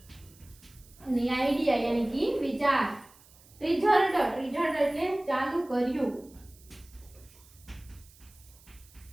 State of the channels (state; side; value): noise; right; hiss, 26 dB below the sound